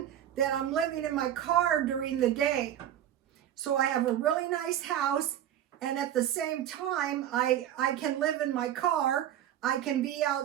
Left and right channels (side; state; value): left; quieter; 11.1 dB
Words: that I'm living in my car during the day. So I have a really nice house, and at the same time, I can live in my car, I can be